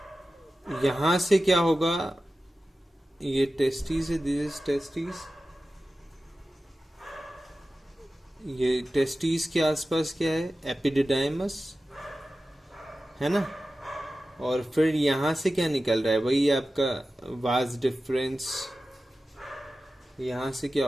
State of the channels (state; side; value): normal; both; correlation 0.94